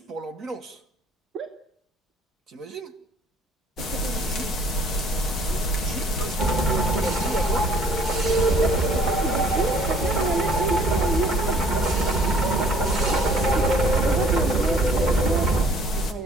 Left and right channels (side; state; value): both; normal; correlation 0.57